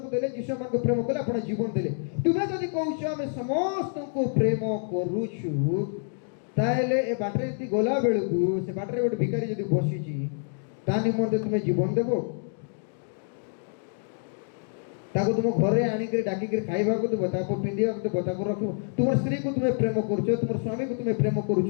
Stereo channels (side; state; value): right; silent; 60 dB below the other